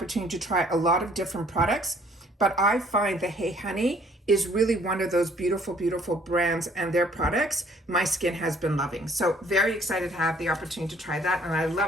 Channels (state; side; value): normal; both; correlation 0.60